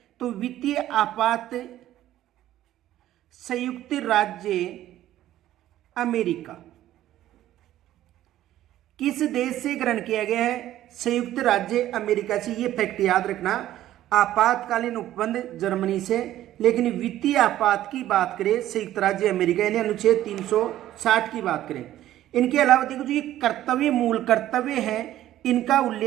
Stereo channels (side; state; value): left; quieter; 13.3 dB